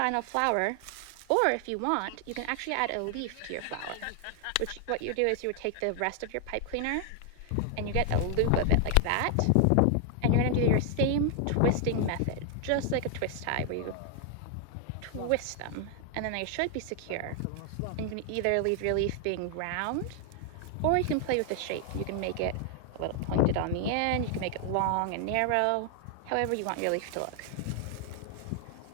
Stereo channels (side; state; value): both; different; correlation 0.00